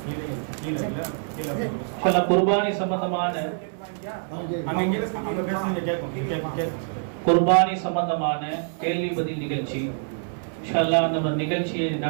குர்பானி சம்பந்தமான கேள்வி பதில் நிகழ்ச்சி இன்ஷா அல்லாஹ் அந்த நிகழ்ச்சியை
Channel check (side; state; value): left; silent; 60 dB below the other